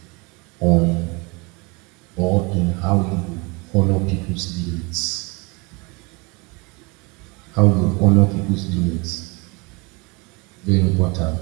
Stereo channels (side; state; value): left; quieter; 28.0 dB